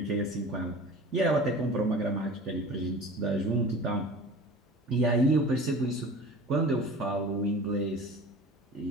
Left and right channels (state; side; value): normal; both; correlation 0.39